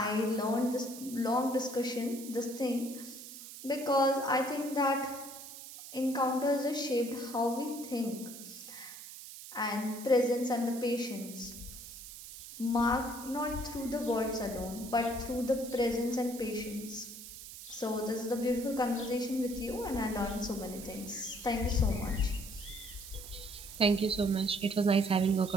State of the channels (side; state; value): right; noise; hiss, 13 dB below the sound